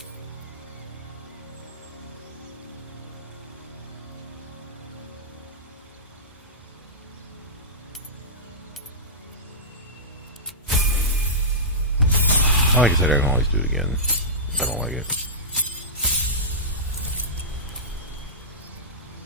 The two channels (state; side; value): normal; both; correlation -0.16